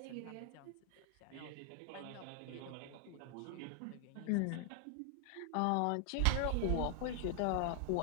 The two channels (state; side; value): different; both; correlation 0.00